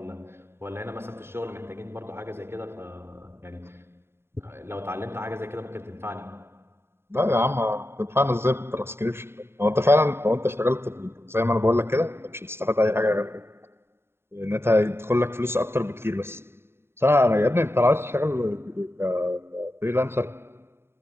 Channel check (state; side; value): late; left; 0.12 ms